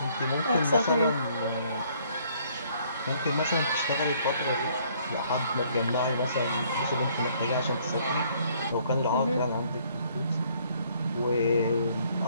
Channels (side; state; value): both; inverted; correlation -0.63